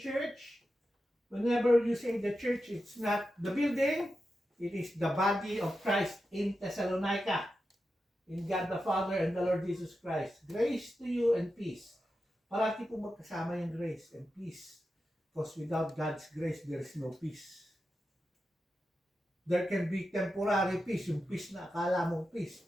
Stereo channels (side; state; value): both; normal; correlation 0.90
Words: Whenever you say the church, it's not the building, it is the body of Christ in Thessalonica, in God the Father and the Lord Jesus Christ. Grace to you and peace. Parati po magkasama yung grace and peace. Because without God's grace, there is no peace. There can be temporary peace, yung peace na akala mong peace.